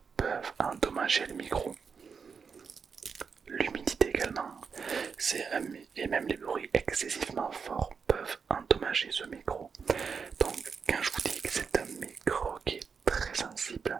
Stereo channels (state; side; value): quieter; left; 5.8 dB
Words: peuvent endommager le micro. L'humidité également. Et même les bruits excessivement forts peuvent endommager ce micro. Donc quand je vous dis que c'est un micro qui est très sensible,